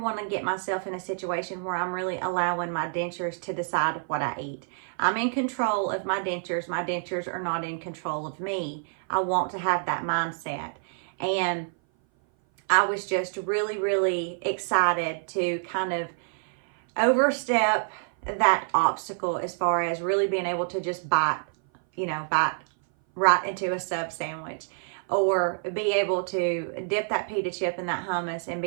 to get myself in a situation where I'm really allowing my dentures to decide what I eat. I'm in control of my dentures. My dentures are not in control of me. I want to have that mindset. And I was just really, really excited to kind of overstep that obstacle as far as really being able to just bite right into a sub sandwich, or be able to dip that pita chip in that hummus and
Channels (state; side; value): silent; left; 57 dB below the other